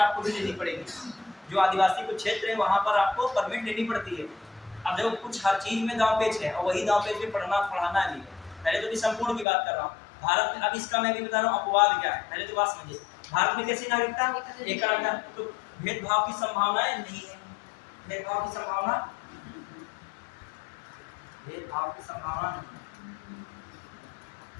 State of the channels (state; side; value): drops out; right; at 9.5 s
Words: भी लेनी पड़ेगी। जो आदिवासी कुछ क्षेत्र है वहां पर आपको परमिट लेनी पड़ती है। अब देखो कुछ हर चीज में दांव पेच है, और वही दांव पेच में पढ़ाना भी है। पहले तो भी संपूर्ण की बात कर रहा हूँ भारत में। अब इसका मैं भी बता रहा हूँ अपवाद क्या है, पहले तो बात समझिए। भारत में कैसी नागरिकता? एकल नागरिकता। तो भेदभाव की संभावनाएं नहीं है। भेदभाव की संभावना, भेदभाव की संभावना नहीं,